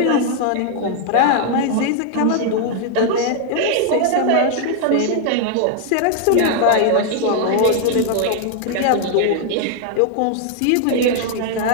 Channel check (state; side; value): different; both; correlation 0.00